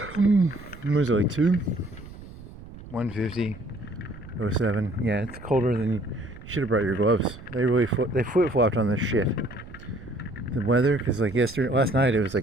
was it, like 2? 150.07. Yeah, it's colder than you should have brought your gloves. They really flip-flopped on this shit. The weather, because like last night it was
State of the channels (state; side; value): noise; right; rumble, 16 dB below the sound